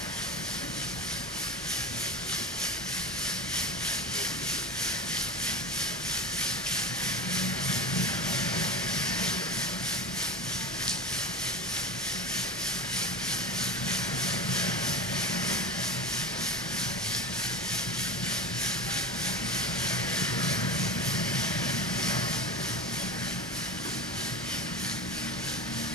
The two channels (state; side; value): normal; both; correlation 0.28